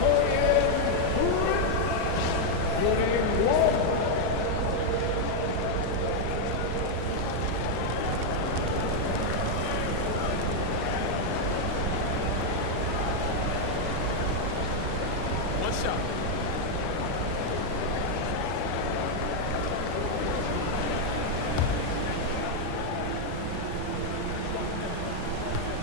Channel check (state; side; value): different; both; correlation 0.00